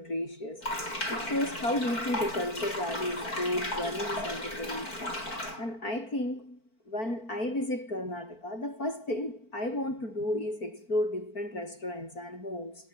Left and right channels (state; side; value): late; right; 4.5 ms